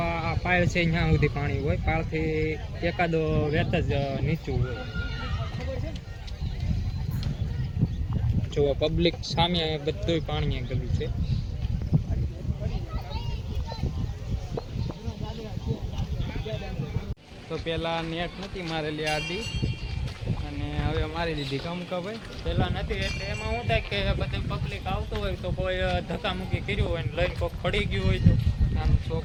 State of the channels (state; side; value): identical; both; correlation 1.00